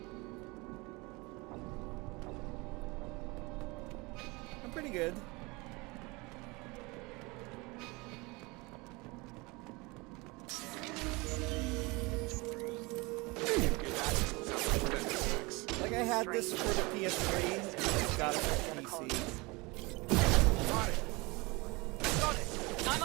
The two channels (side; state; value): left; quieter; 25.4 dB